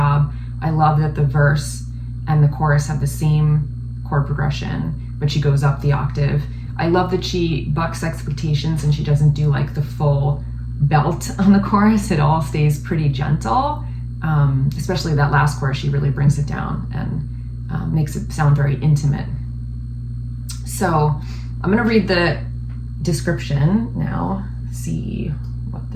I love that the verse and the chorus have the same chord progression, but she goes up the octave. I love that she bucks expectations and she doesn't do like the full belt on the chorus. It all stays pretty gentle, especially that last chorus. She really brings it down and makes it sound very intimate. So I'm gonna read the description now, see what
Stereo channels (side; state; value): both; identical; correlation 1.00